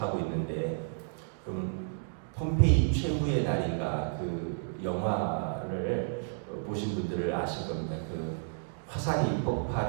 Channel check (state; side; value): silent; left; digital silence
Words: 있는데, 그러면 폼페이 최후의 날인가 그 영화를 보신 분들을 아실 겁니다. 그 화산이